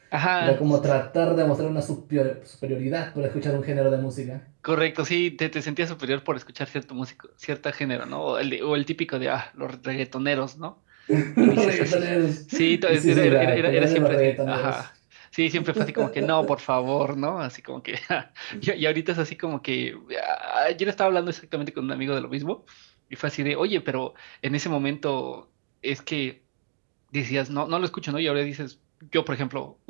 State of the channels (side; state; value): left; silent; digital silence